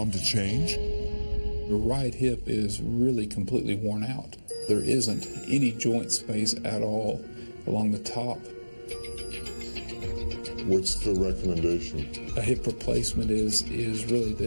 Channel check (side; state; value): both; inverted; correlation -1.00